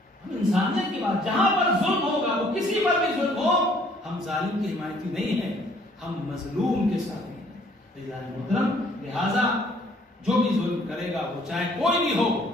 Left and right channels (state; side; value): normal; both; correlation 0.60